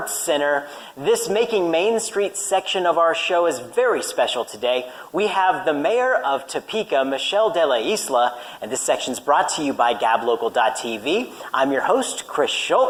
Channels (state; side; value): identical; both; correlation 1.00